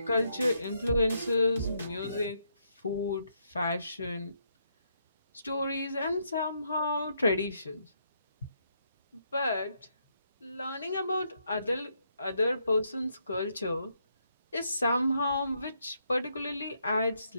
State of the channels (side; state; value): both; inverted; correlation -0.76